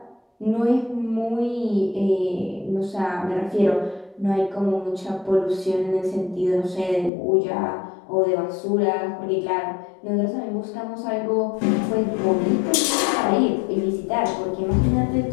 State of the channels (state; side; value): drops out; right; at 7.1 s